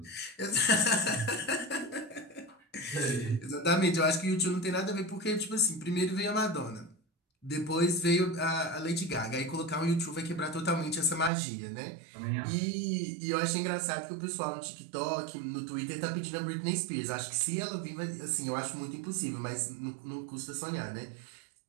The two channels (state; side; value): drops out; left; at 11.3 s